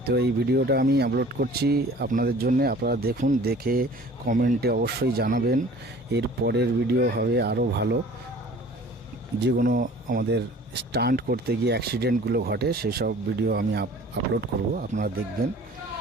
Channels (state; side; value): normal; both; correlation 0.47